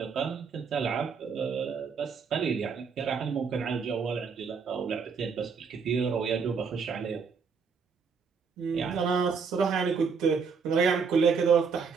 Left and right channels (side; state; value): left; quieter; 5.7 dB